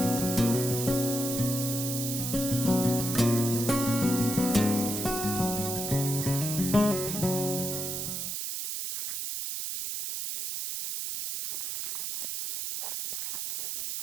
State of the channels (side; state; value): right; noise; hiss, 3 dB below the sound